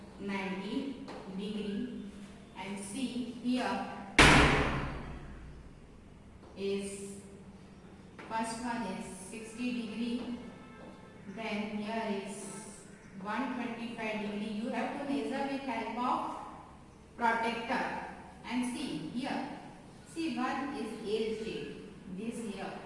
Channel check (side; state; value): both; identical; correlation 1.00